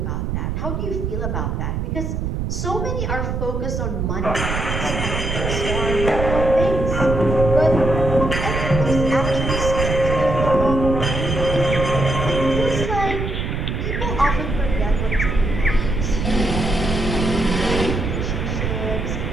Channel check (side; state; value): right; noise; rumble, 2 dB below the sound